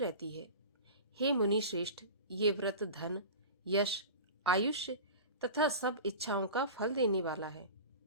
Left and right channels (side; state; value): both; inverted; correlation -0.34